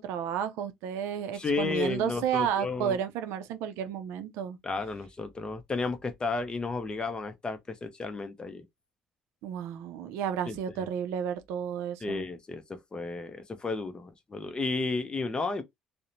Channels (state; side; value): normal; both; correlation 0.54